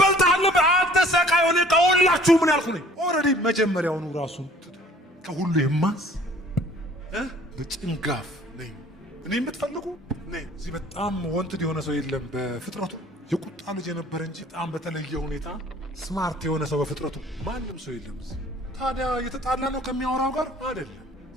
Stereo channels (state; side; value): normal; both; correlation 0.53